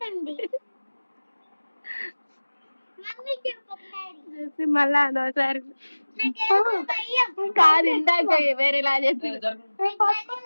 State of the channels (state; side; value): inverted; both; correlation -1.00